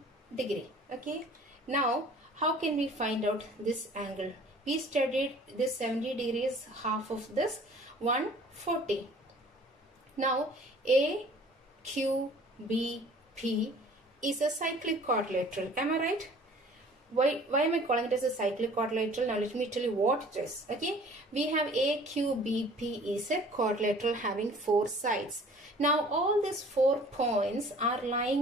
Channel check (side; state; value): both; normal; correlation 0.50